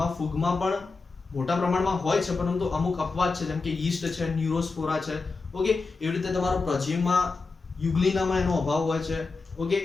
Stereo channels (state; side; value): quieter; right; 4.0 dB